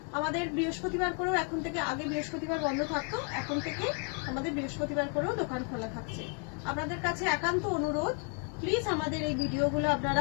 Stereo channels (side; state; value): right; quieter; 38.1 dB